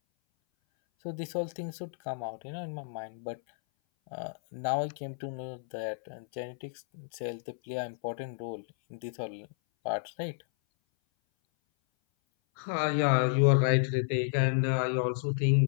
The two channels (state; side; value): silent; right; 57 dB below the other